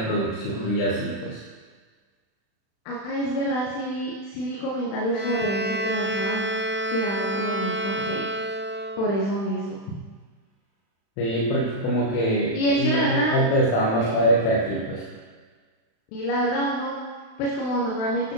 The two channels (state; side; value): late; right; 36 ms